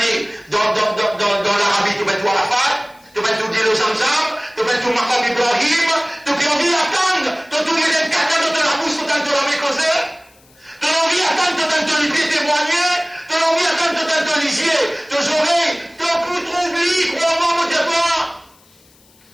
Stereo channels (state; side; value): noise; left; hiss, 30 dB below the sound